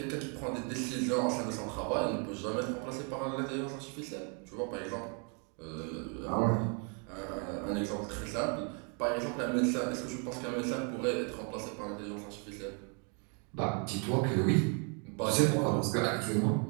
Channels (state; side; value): quieter; left; 37.7 dB